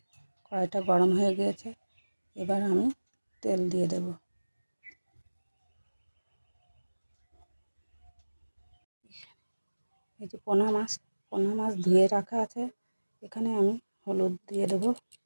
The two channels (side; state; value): both; inverted; correlation -1.00